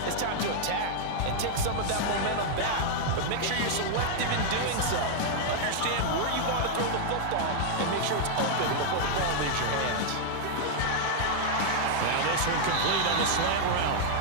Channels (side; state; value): both; different; correlation -0.01